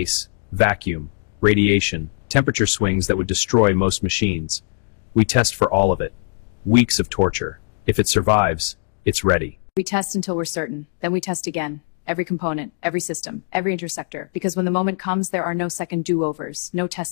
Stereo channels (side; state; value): right; silent; digital silence